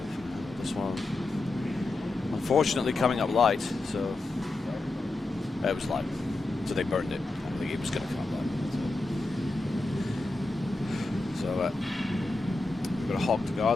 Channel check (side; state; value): right; quieter; 3.1 dB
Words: for this one. Unfortunately, coming up light, so it was light, so they burned it. I don't think it was going to come up light. So we've got a hog to